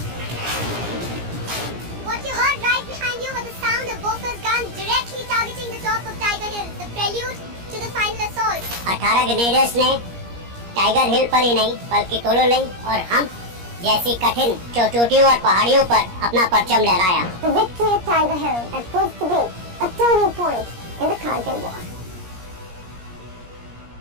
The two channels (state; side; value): late; left; 17 ms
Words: 18 ग्रेनेडर्स ने टाइगर हिल पर ही नहीं बल्कि तोलोलिंग और हम जैसी कठिन चोटियों और पहाड़ियों पर अपना परचम लहराया। The victory at Tiger Hill had proved to be a turning point in the Kargil War.